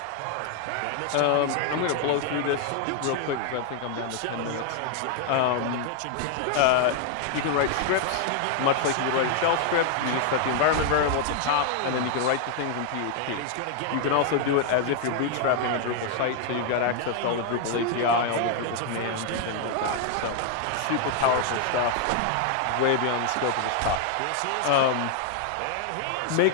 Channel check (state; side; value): different; both; correlation 0.00